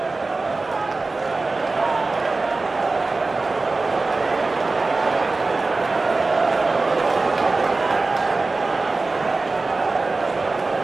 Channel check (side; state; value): left; quieter; 3.5 dB